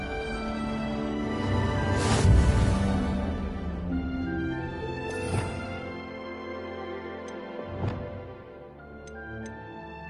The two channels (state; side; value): identical; both; correlation 1.00